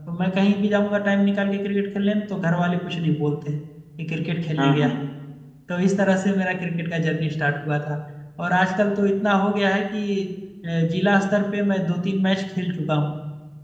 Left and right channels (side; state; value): both; identical; correlation 1.00